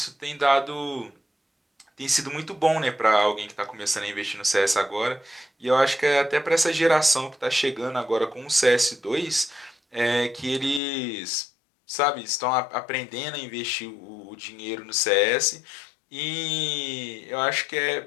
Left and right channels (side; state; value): right; drops out; at 10.8 s